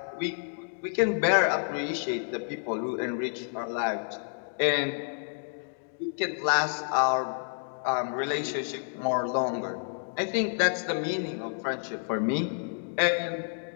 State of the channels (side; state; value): right; silent; digital silence